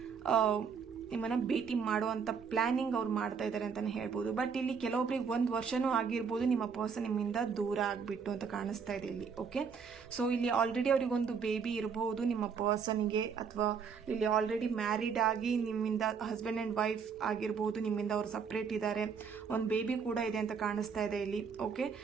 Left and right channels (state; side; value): quieter; left; 6.1 dB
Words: ನಿಮ್ಮನ್ನ ಭೇಟಿ ಮಾಡುವಂತ ಪ್ಲಾನಿಂಗ್ ಅವ್ರು ಮಾಡ್ತಾ ಇದ್ದಾರೆ ಅಂತಾನೆ ಹೇಳ್ಬೋದು. ಬಟ್ ಇಲ್ಲಿ ಕೆಲವೊಬ್ರಿಗೆ 1 ವರ್ಷನೂ ಆಗಿರ್ಬೋದು ನಿಮ್ಮ ಪರ್ಸನ್ ನಿಮ್ಮಿಂದ ದೂರ ಆಗ್ಬಿಟ್ಟು ಅಂತ ಕಾಣಿಸ್ತಾ ಇದೆ ಇಲ್ಲಿ. ಓಕೆ, ಸೊ ಇಲ್ಲಿ ಆಲ್ರೆಡಿ ಅವ್ರಿಗೊಂದು ಬೇಬಿ ಇರಬಹುದು ನಿಮ್ಮ ಪರ್ಸನ್ಗೆ, ಅಥವಾ ಇಲ್ಲಿ ಆಲ್ರೆಡಿ ಮ್ಯಾರಿಡ್ ಆಗಿ ನಿಮ್ಮಿಂದ ಹಸ್ಬೆಂಡ್ ಅಂಡ್ ವೈಫ್ ಆಗಿರ್ಬೋದು, ನಿಮ್ಮಿಂದ ಅವ್ರು ಸಪ್ರೇಟ್ ಇದ್ದಾರೆ, ಒಂದು ಬೇಬಿ ಕೂಡ ಇದೆ ಅಂತ ಕಾಣಿಸ್ತಾ ಇದೆ ಇಲ್ಲಿ. ಓಕೆ,